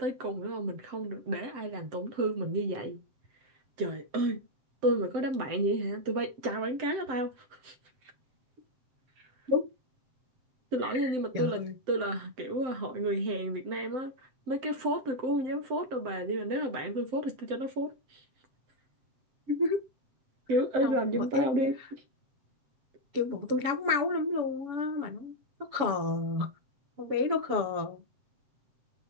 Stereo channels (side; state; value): left; late; 7.8 ms